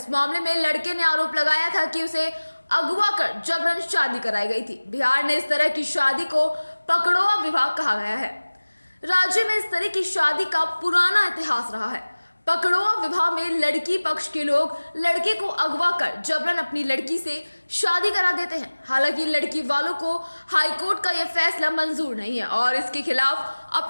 मामले में लड़के ने आरोप लगाया था कि उसे अगवा कर जबरन शादी कराई गई थी। बिहार ने इस तरह की शादी को पकड़ोआ विवाह कहा गया है। राज्य में इस तरह की शादी का पुराना इतिहास रहा है। पकड़ोआ विवाह में लड़की पक्ष के लोग लड़के को अगवा कर जबरन अपनी लड़की से शादी करा देते हैं। हालांकि लड़की वालों को हाईकोर्ट का यह फैसला मंजूर नहीं है और इसके खिलाफ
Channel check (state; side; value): inverted; both; correlation -1.00